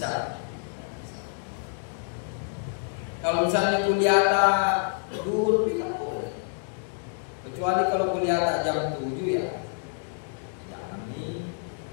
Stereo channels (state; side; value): silent; right; digital silence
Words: Kalau misalnya kuliah duhur, tidak boleh. kecuali kalau kuliah tak jam 7 ya jangan nih,